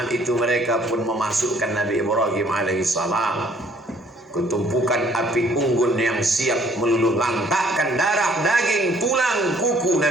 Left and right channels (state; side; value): normal; both; correlation 0.60